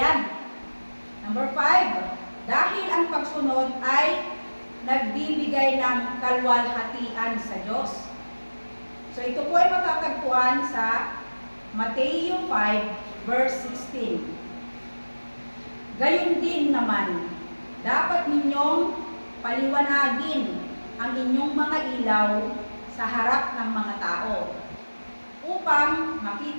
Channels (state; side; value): inverted; both; correlation -1.00